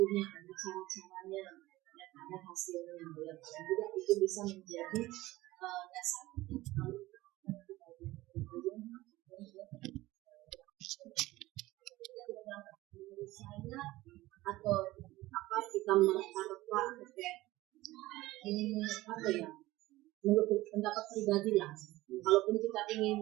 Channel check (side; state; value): left; quieter; 17.9 dB